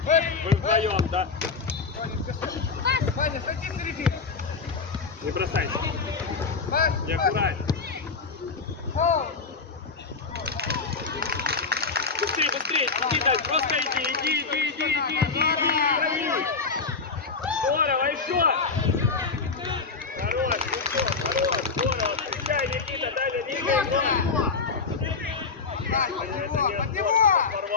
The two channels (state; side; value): quieter; right; 4.7 dB